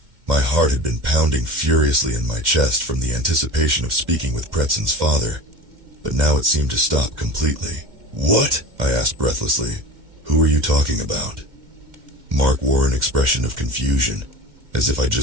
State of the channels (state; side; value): late; left; 2.1 ms